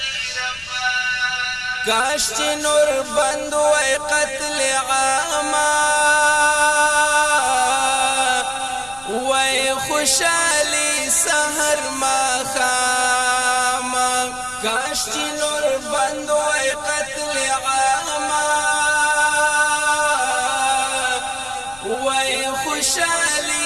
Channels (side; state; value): left; noise; rumble, 22 dB below the sound